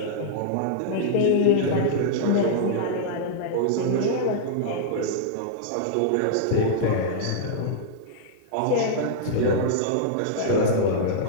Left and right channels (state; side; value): different; both; correlation -0.02